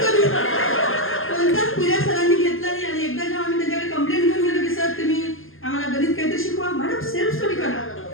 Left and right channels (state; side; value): late; right; 0.59 ms